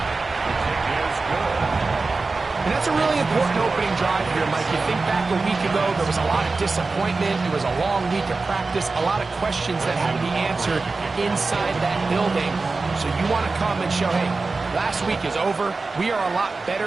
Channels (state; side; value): quieter; left; 3.8 dB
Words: And that's a really important opening drive here, Mike. You think back a week ago, there was a lot of disappointment. It was a long week of practice, a lot of questions that had to be answered inside that building. So you want to come and show, hey, last week is over. We are a lot